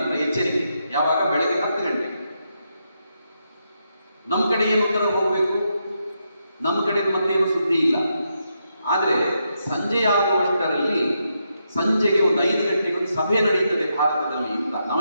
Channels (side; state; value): both; inverted; correlation -0.82